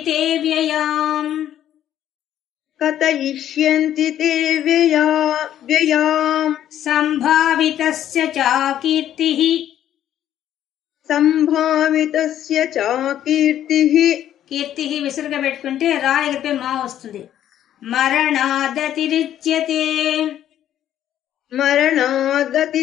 తే వ్యయాం. కథయిష్యంతి తే వ్యయాం. సంభావితస్య చాకీర్తిః. సంభావితస్య చాకీర్తిః. కీర్తిః విసురుగా పెట్టుకుంటే రా ఎగిరిపై మా వస్తుంది. మరణాదతిరిచ్యతే.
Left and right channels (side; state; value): right; quieter; 11.2 dB